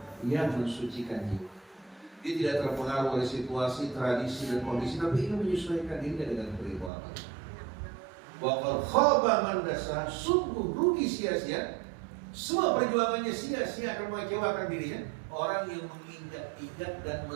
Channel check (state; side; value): drops out; left; at 6.9 s